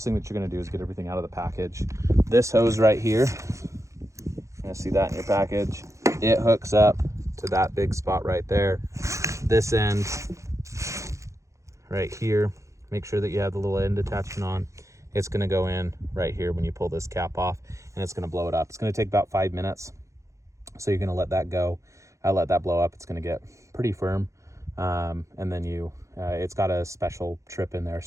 thing that you're gonna do is get everything out of the package. This hose right here, you're gonna see that in your package. It hooks up to that big spot right there. This end right here, make sure that you have the little end attachment on. It's gonna go in right here when you pull this cap off, and it's gonna blow it up. It's gonna take about 5 minutes. So you're gonna let that go. Let that blow up. It's gonna get pretty firm. And then it's got a special trip in there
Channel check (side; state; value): left; late; 0.15 ms